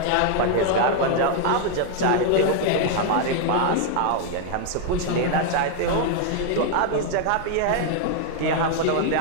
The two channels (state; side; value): different; both; correlation 0.00